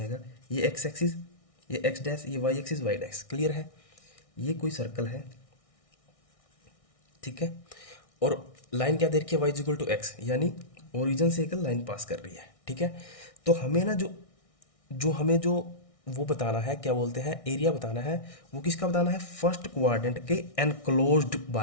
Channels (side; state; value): right; late; 1.6 ms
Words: ये एक्स एक्सिस, ये एक्स डैश, ये y axis, y dash. Clear है? ये कोई सर्कल है, ठीक है, और लाइन क्या दे रखी है, वाई इक्वल टू एक्स, यानी ओरिजिन से एक लाइन पास कर रही है, ठीक है। तो हमें ना जो जो हमें जो वो बताना है, क्या बोलते हैं, एरिया बताना है, वो किसका बताना है, फर्स्ट क्वाड्रेंट के enclosed